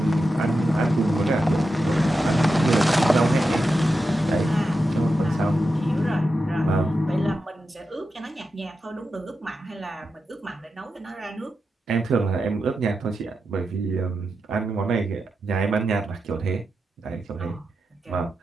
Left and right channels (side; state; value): both; normal; correlation 0.89